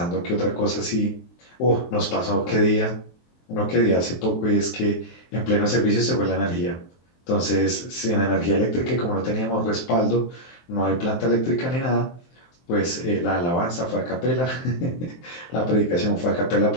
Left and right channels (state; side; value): late; right; 23 ms